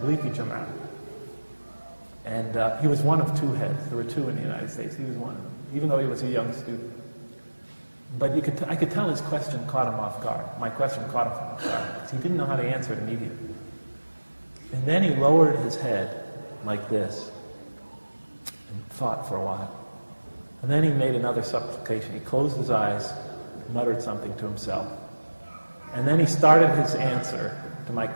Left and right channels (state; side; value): inverted; both; correlation -1.00